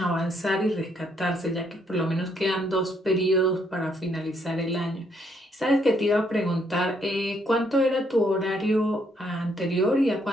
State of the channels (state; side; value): normal; both; correlation 0.71